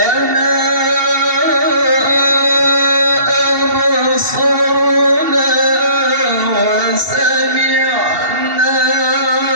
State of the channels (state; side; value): late; left; 2.7 ms